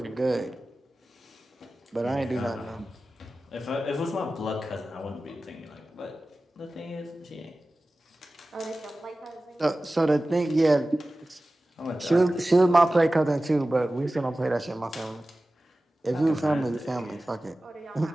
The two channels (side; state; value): both; normal; correlation 0.96